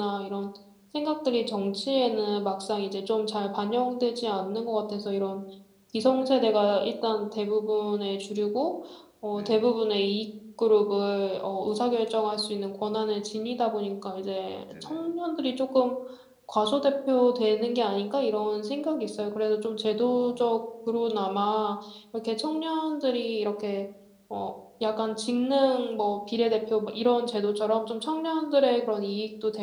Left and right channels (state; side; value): identical; both; correlation 1.00